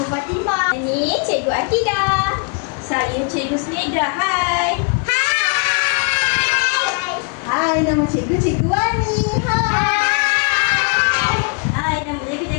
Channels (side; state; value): right; quieter; 35.9 dB